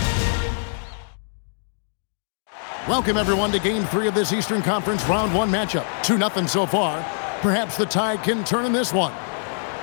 Welcome, everyone, to Game 3 of this Eastern Conference Round 1 matchup. 2-0 so far. Perhaps the tide can turn in this one.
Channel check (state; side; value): silent; right; digital silence